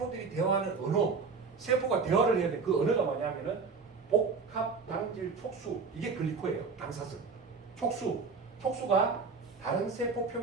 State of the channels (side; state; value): left; quieter; 4.9 dB